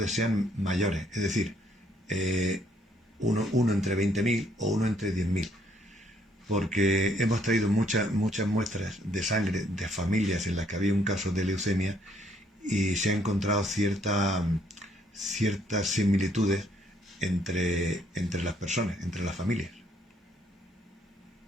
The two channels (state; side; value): normal; both; correlation 0.68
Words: sean mayores, es decir, uno entre 20.000 o 1 entre 10.000, porque hemos traído muchas muestras de sangre de familias en las que había un caso de leucemia y se han encontrado ciertas similitudes entre las personas, entre las familias.